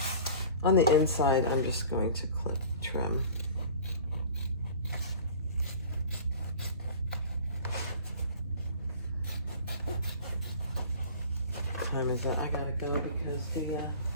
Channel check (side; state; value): both; inverted; correlation -0.42